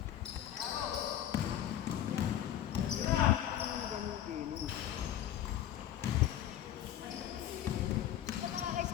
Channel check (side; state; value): right; quieter; 11.4 dB